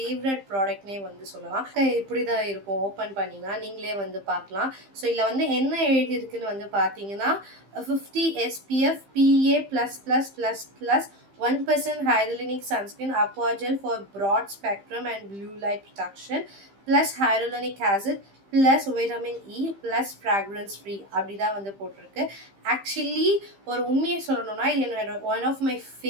ப்ராடக்ட்னே வந்து சொல்லலாம். இப்படி தான் இருக்கும், ஓப்பன் பண்ணிங்கன்னா நீங்களே வந்து பார்க்கலாம். ஸோ இதில் வந்து என்ன எழுதியிருக்குன்னு வந்து பார்த்தீங்கன்னா 50 SPF PA++++ 1% hyaluronic sunscreen aqua gel for broad spectrum and blue light protection plus hyaluronic acid plus vitamin E plus fragrance free அப்படி தான் வந்து போட்டிருக்கு. ஆக்சுவலி ஒரு உண்மையை சொல்லணும்னா இது என்னோட one of my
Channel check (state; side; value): late; left; 15 ms